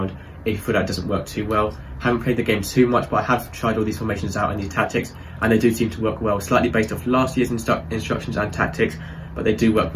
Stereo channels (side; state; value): both; identical; correlation 1.00